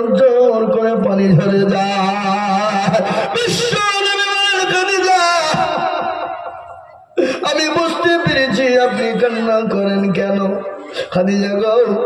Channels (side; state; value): both; identical; correlation 1.00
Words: জল করে পানি ঝরে যায়। বিশ্ব নবী বলেন খাদিজা আমি বুঝতে পেরেছি আপনি কান্না করেন কেন। খাদিজা গো